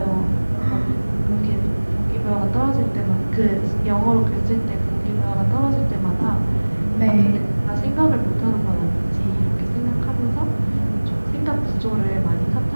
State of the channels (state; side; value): inverted; both; correlation -1.00